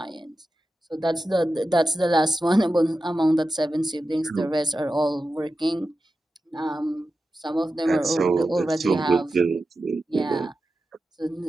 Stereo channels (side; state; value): both; normal; correlation 0.92